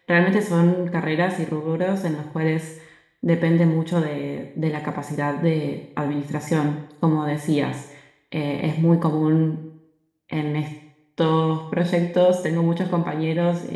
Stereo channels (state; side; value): identical; both; correlation 1.00